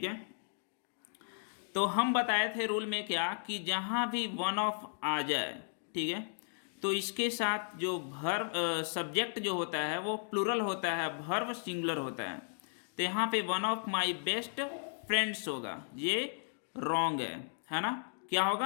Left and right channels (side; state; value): right; silent; digital silence